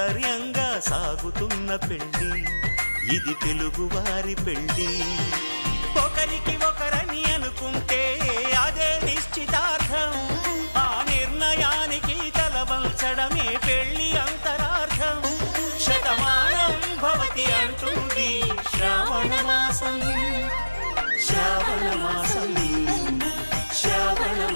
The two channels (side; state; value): both; inverted; correlation -1.00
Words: సాగుతున్న పెళ్ళి ఇది తెలుగువారి పెళ్ళి ఒకరికి ఒకరని అనుకుంటే అదే నిశ్చితార్థం ఆ నిర్ణయానికి తలవంచడమే పెళ్లి అంతరార్థం శతమానం భవతి అంటుంది శ్రావణ మాసం శ్రావణ మాసం శ్రావణ